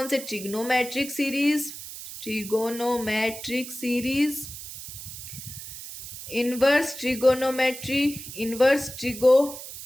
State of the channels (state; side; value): noise; right; hiss, 11 dB below the sound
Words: trigonometric series, trigonometric series, inverse trigonometry, inverse trigo